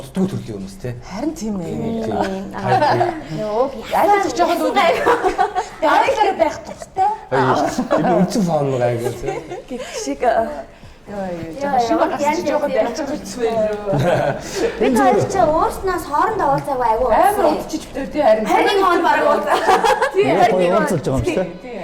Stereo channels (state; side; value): identical; both; correlation 1.00